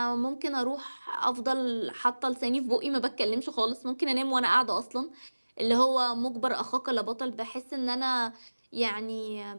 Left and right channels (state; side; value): inverted; both; correlation -1.00